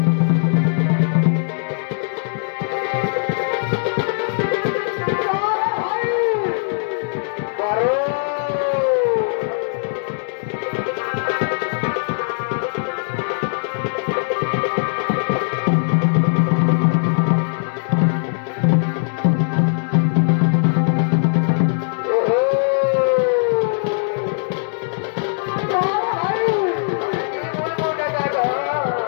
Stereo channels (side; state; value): right; silent; digital silence